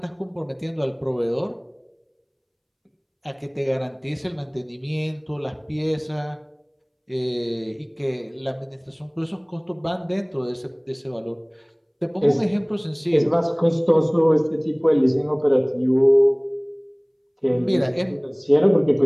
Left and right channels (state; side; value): identical; both; correlation 1.00